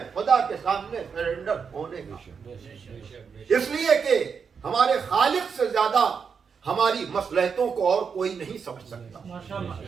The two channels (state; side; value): quieter; left; 6.2 dB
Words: خدا کے سامنے سرنڈر ہونے کا۔ اس لیے کہ ہمارے خالق سے زیادہ ہماری مصلحتوں کو اور کوئی نہیں سمجھ سکتا،